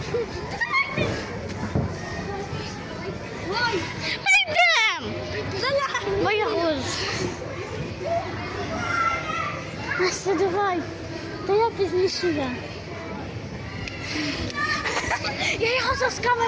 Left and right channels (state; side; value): identical; both; correlation 1.00